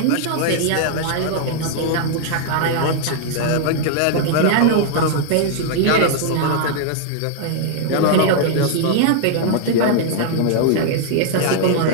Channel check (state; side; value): different; both; correlation -0.01